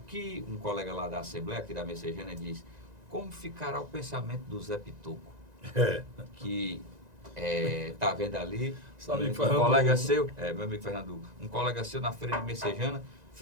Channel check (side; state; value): left; late; 1.9 ms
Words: um colega lá da Assembleia, aqui da Messejana, diz, como ficará o pensamento do Zé Pitoco? Que está vendo ali, um colega seu, meu amigo Fernando, um colega seu na feira de Messejana,